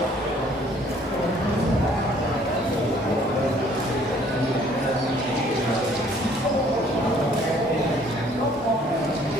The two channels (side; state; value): both; normal; correlation 0.59